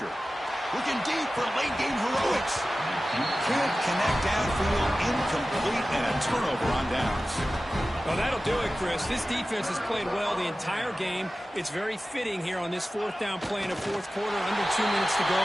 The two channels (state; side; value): normal; both; correlation 0.95